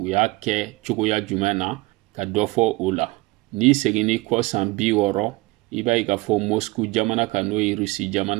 y'a kɛ cogoya jumɛn na ka dɔ fɔ o la. Ni seginni kɔ san 60 i b'a ye k'a fɔ Moscou jamana kan n'o ye Russie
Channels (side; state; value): left; quieter; 22.2 dB